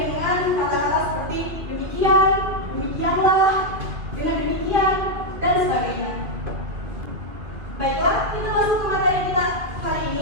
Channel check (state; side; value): late; left; 2.5 ms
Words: kata-kata seperti demikian, demikianlah, dengan demikian, dan sebagainya. Baiklah, kita masuk ke materi kita hari